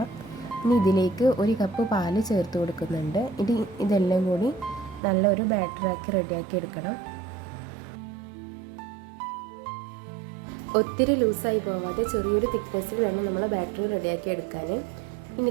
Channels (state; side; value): drops out; left; at 5.0 s